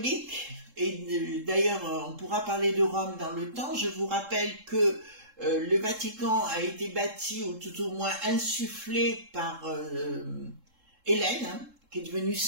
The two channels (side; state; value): left; late; 3.7 ms